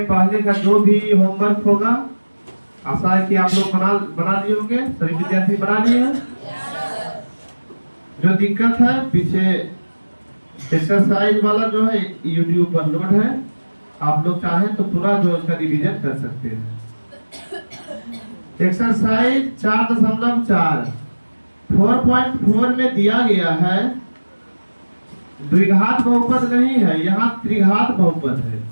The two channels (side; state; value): both; inverted; correlation -1.00